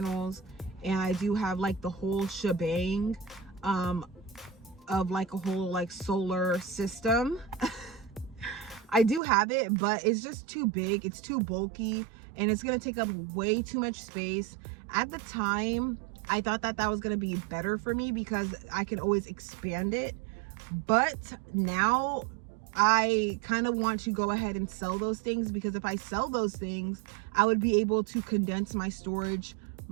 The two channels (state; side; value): drops out; left; at 9.2 s